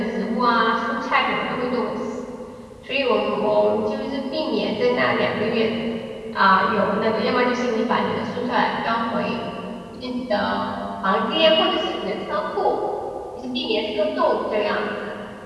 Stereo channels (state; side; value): identical; both; correlation 1.00